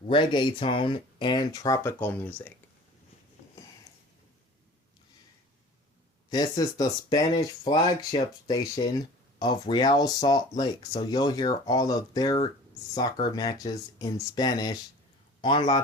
reggaeton, and tropical music. This is the Spanish flagship station of Real Salt Lake, so you'll hear all of their soccer matches in Spanish on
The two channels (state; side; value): normal; both; correlation 0.44